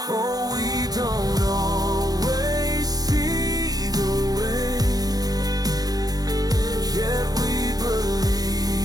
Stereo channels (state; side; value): late; left; 0.19 ms